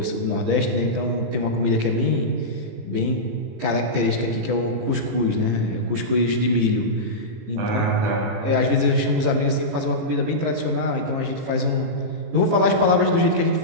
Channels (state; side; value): late; left; 18 ms